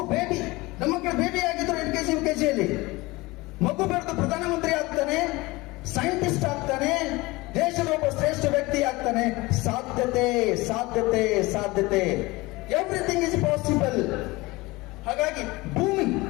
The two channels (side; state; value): right; quieter; 22.0 dB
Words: ಬೇಬಿ, ನಮ್ಮ ಮಕ್ಕಳು ಬೇಬಿ ಆಗಿದ್ರು LKG UKG ಯಲ್ಲಿ. ಮಗು ಬೆಳೆದು ಪ್ರಧಾನಮಂತ್ರಿ ಆಗ್ತಾನೆ, ಸೈಂಟಿಸ್ಟ್ ಆಗ್ತಾನೆ, ದೇಶದ ಒಬ್ಬ ಶ್ರೇಷ್ಠ ವ್ಯಕ್ತಿ ಆಗ್ತಾನೆ. ಸಾಧ್ಯತೆ, ಸಾಧ್ಯತೆ, ಸಾಧ್ಯತೆ. Everything is possible. ಹಾಗಾಗಿ ಭೂಮಿ,